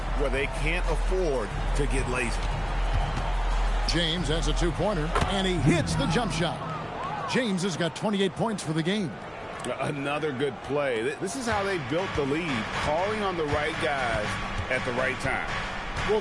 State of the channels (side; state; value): both; identical; correlation 1.00